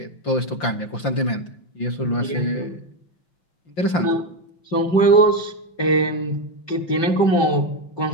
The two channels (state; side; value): late; right; 5.8 ms